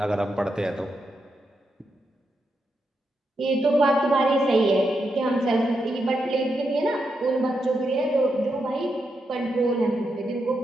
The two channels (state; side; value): normal; both; correlation 0.84